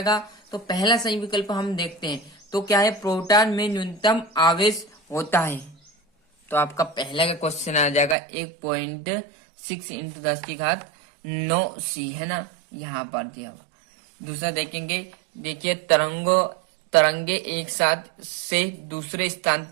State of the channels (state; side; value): drops out; left; at 8.2 s